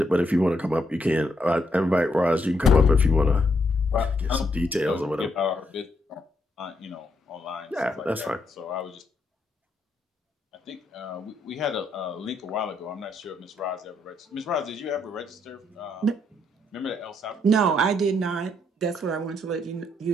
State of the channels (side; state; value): both; normal; correlation 0.76